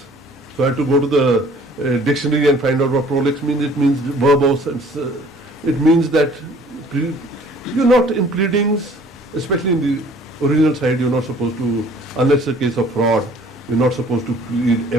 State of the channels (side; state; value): both; normal; correlation 0.54